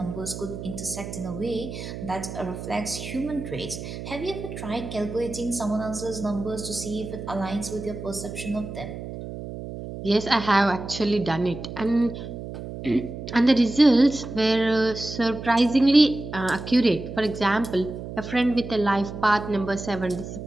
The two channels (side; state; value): right; noise; hum, 9 dB below the sound